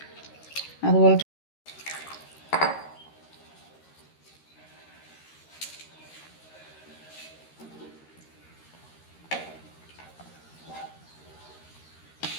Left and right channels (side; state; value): right; late; 13 ms